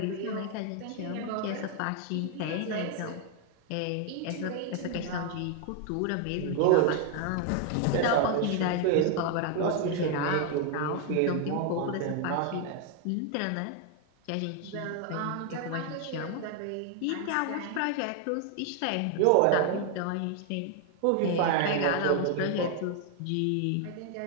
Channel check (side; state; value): both; different; correlation 0.00